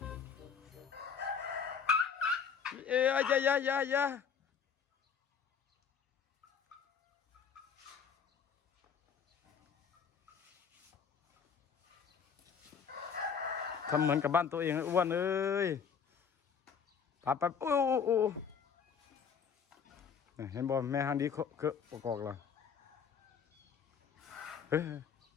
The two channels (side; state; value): right; quieter; 6.8 dB